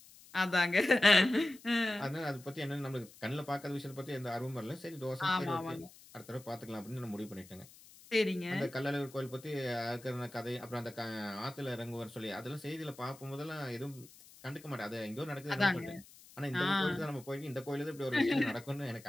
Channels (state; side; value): noise; left; hiss, 22 dB below the sound